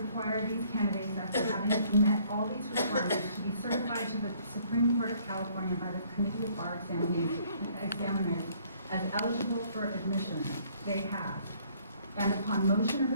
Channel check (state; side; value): inverted; both; correlation -0.62